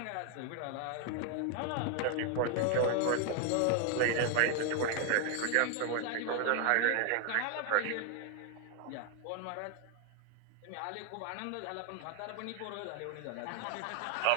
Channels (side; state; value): both; different; correlation 0.00